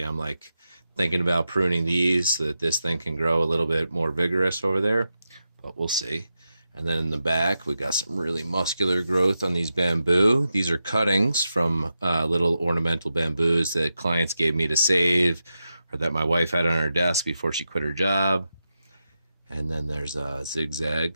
I'm like thinking about pruning these so that this thing can grow a little bit more vigorous over there, but we'll see. And then in the back, we got some really muscular growth on these bamboo. These are cuttings from little ornamental bamboos that clients gave me to save or that my wife had on her desk before she quit her job. And then there's a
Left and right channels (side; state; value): both; inverted; correlation -0.89